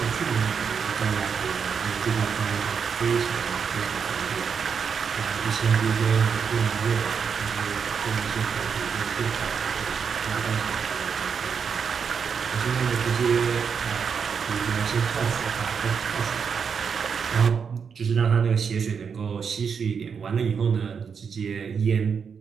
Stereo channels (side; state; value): left; quieter; 6.4 dB